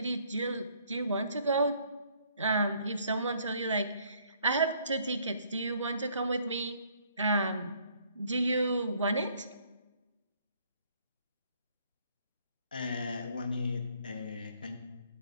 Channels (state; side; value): inverted; both; correlation -0.64